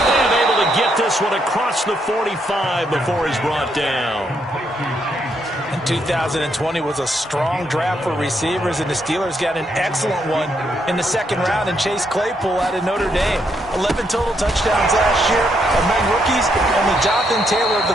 able to get this one across the 45 before he's brought down. 2020 was a strong draft for receivers, and the Steelers got an excellent one in the second round and Chase Claypool out of Notre Dame. 11 total touchdowns last year. Among rookies, only Jonathan Taylor of the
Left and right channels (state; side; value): normal; both; correlation 0.76